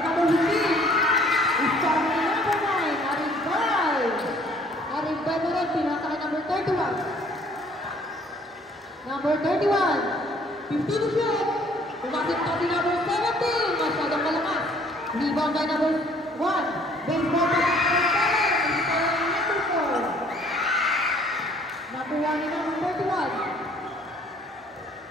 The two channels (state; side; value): normal; both; correlation 0.58